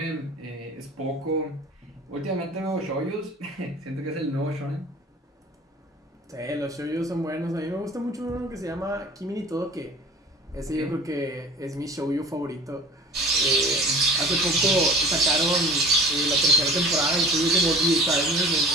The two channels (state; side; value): normal; both; correlation 0.44